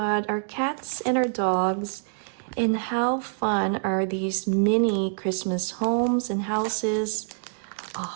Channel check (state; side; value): silent; left; digital silence